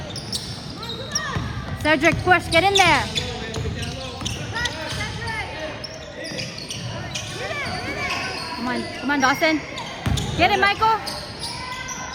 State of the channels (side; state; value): both; identical; correlation 1.00